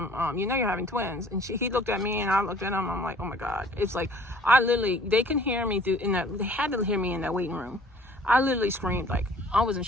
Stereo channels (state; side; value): normal; both; correlation 0.54